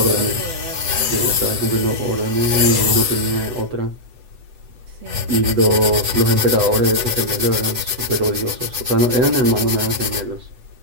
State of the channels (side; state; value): left; late; 8.0 ms